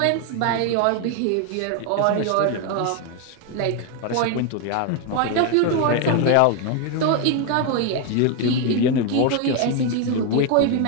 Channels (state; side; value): different; both; correlation 0.01